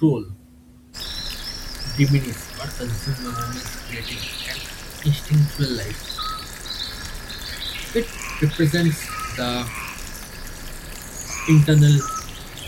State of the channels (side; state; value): both; identical; correlation 1.00